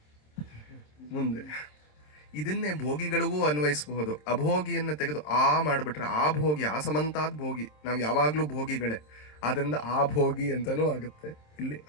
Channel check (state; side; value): late; right; 27 ms